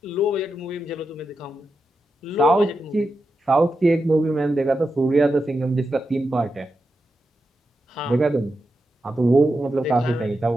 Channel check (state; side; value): normal; both; correlation 0.88